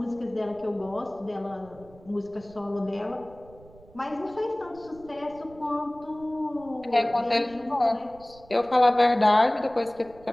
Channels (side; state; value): right; noise; rumble, 23 dB below the sound